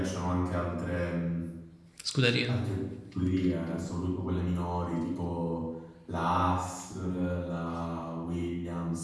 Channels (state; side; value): identical; both; correlation 1.00